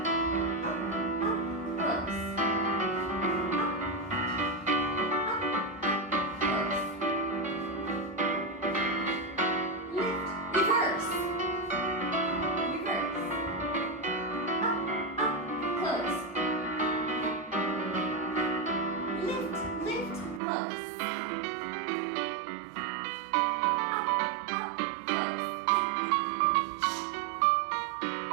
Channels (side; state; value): left; drops out; at 20.4 s